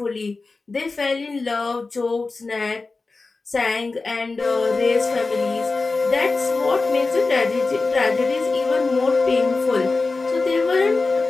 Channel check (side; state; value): right; quieter; 3.8 dB